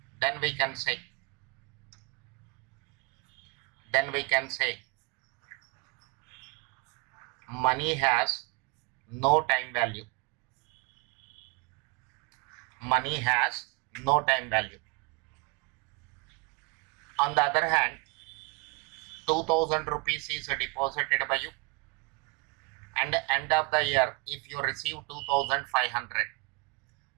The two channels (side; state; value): left; quieter; 29.7 dB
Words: then we can say money has no time value. Money has no time value. On the other hand, 2000 rupees is deposited by you, and end of the year if you receive 2500.